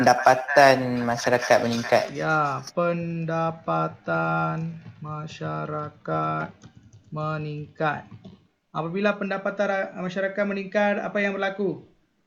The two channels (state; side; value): identical; both; correlation 1.00